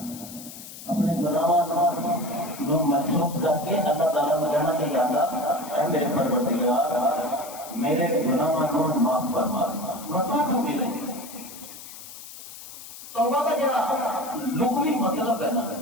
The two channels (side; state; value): left; noise; hiss, 14 dB below the sound